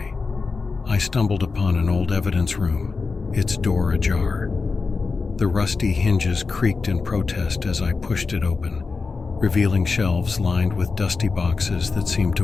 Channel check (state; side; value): quieter; right; 4.4 dB